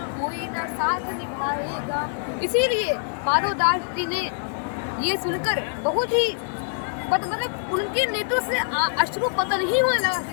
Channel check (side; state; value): right; silent; digital silence